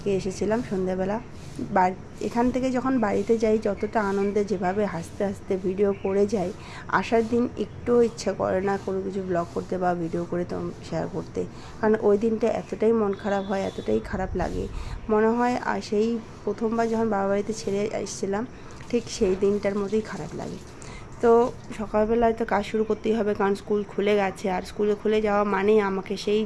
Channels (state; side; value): identical; both; correlation 1.00